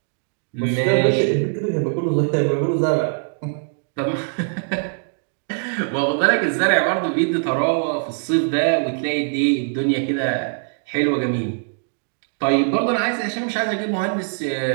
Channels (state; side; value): silent; left; 63 dB below the other